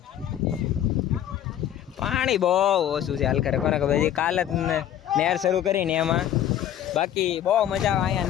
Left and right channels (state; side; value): quieter; right; 10.9 dB